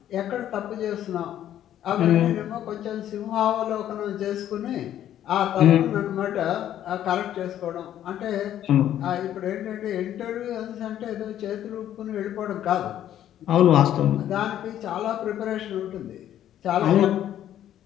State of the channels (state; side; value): quieter; right; 11.4 dB